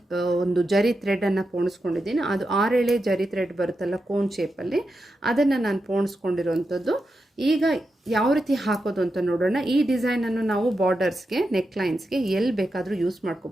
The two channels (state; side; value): normal; both; correlation 0.88